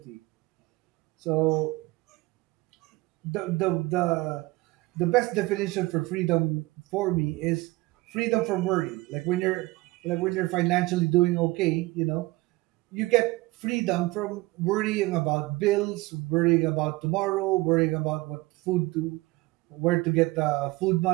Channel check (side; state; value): left; quieter; 21.2 dB